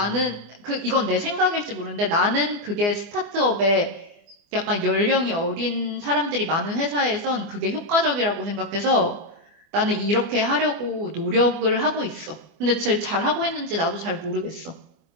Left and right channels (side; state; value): left; late; 24 ms